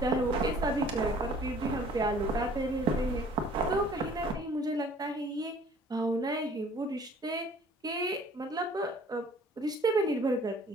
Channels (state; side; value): normal; both; correlation 0.54